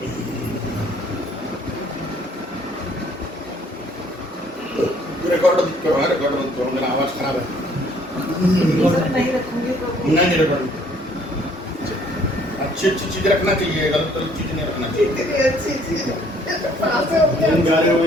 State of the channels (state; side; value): normal; both; correlation 0.61